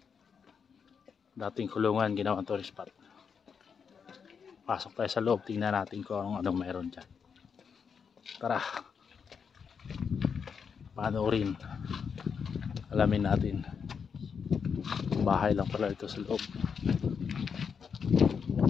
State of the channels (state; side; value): quieter; right; 6.4 dB